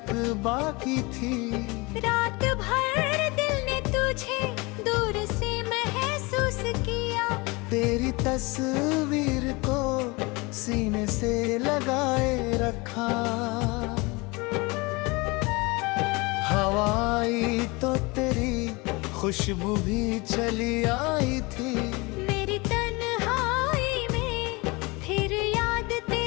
बाकी थी। रात भर दिल ने तुझे दूर से महसूस किया, तेरी तस्वीर को सीने से लगाए रखा। हवा आई तो तेरी खुशबू भी चली आई थी। मेरी तन्हाई में फिर याद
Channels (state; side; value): quieter; right; 25.6 dB